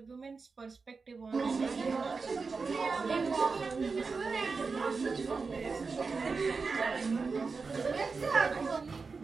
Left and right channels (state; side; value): quieter; left; 4.6 dB